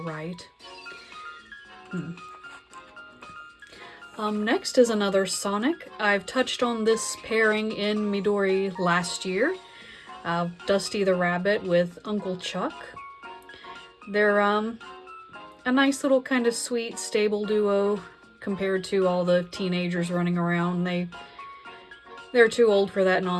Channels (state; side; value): identical; both; correlation 1.00